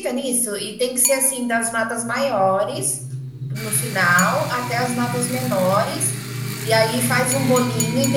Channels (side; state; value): both; identical; correlation 1.00